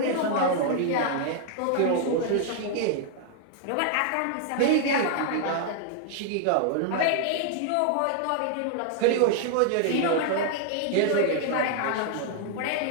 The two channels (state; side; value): different; both; correlation 0.00